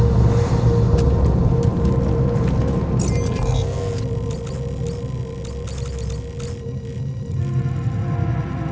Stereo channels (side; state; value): both; identical; correlation 1.00